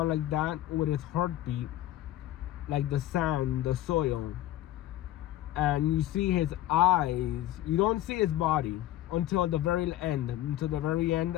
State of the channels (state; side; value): quieter; right; 14.1 dB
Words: like that with its heartbeat, like the sand, the soil. And you see his eyes. You don't see his body until the very end,